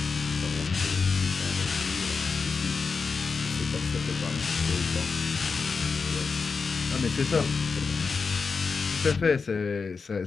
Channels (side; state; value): right; quieter; 4.9 dB